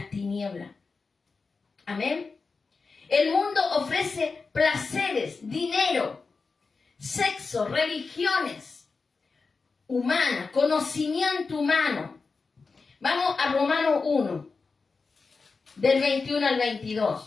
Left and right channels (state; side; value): quieter; right; 4.4 dB